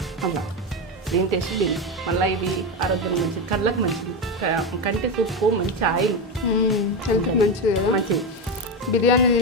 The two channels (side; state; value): both; normal; correlation 0.14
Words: అలా, దీని టేస్ట్ దీని. మళ్ళీ ఇవి ఆరోగ్యం మంచిది, కళ్ళకు మంచిది, కంటి సూపు మంచి ఆయిల్, హెల్త్ మంచిది కదా. మంచిది. బిర్యానీ